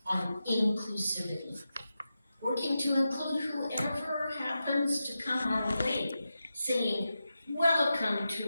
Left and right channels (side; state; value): both; inverted; correlation -0.90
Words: on inclusivity, working to include whoever happens to come our way, saying, welcome